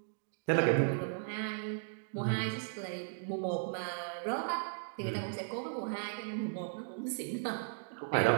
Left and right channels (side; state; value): left; silent; digital silence